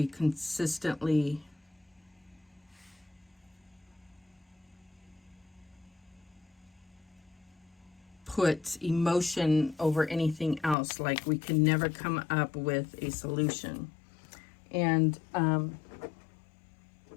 consistently put emotion over anything else. Like, we can never come up with a solution. And I'm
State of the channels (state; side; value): drops out; right; at 10.8 s